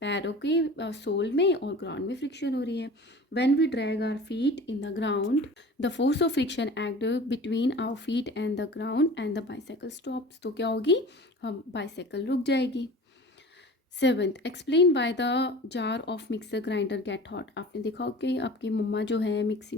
पैरों के सोल में और ग्राउंड में फ्रिक्शन हो रही है। When we drag our feet in the ground, the force of friction act between our feet and the ground and the bicycle stops. तो क्या होगी, हम बाईसाइकिल रुक जाएगी। Seventh, explain why the jar of mixer grinder get hot. आपने देखा हो कि आपकी मम्मा जो है मिक्सी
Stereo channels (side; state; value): both; normal; correlation 0.40